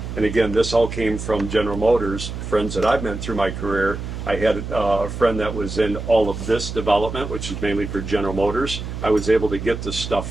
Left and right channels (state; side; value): noise; right; hum, 7 dB below the sound